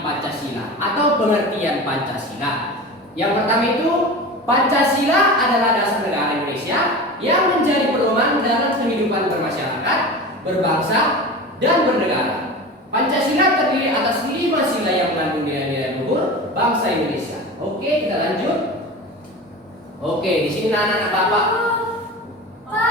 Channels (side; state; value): both; normal; correlation 0.31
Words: Pancasila atau pengertian Pancasila. Yang pertama itu, Pancasila adalah dasar negara Indonesia yang menjadi pedoman dalam kehidupan bermasyarakat, berbangsa, dan bernegara. Pancasila terdiri atas 5 sila yang mengandung nilai-nilai luhur bangsa Indonesia. Oke, kita lanjut. Oke, di sini anak-anak Bapak.